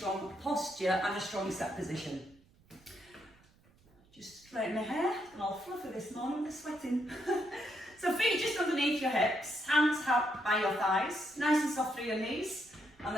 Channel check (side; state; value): right; noise; rumble, 30 dB below the sound